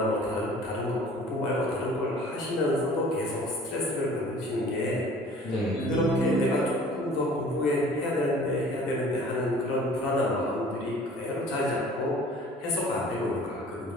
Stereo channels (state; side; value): normal; both; correlation 0.49